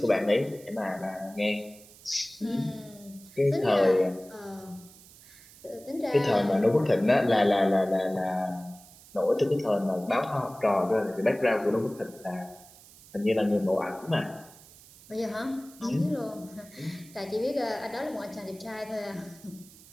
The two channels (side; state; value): right; noise; hiss, 22 dB below the sound